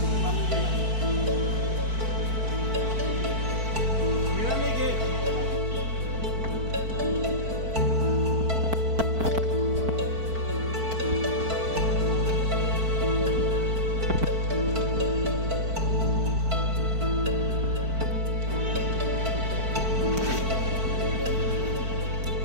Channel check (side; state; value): left; late; 4.5 ms